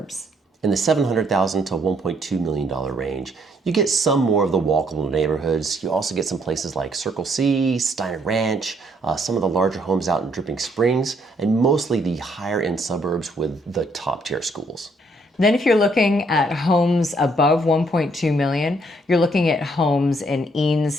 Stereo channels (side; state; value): both; normal; correlation 0.69